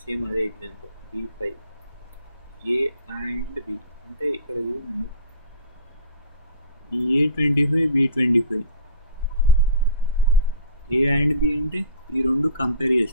సేమ్ అదే example, B5 A and B, అంటే ఇక్కడ చూడండి A25 B25 A and B అంటే ఈ రెండు కంపేర్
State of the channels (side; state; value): both; inverted; correlation -0.42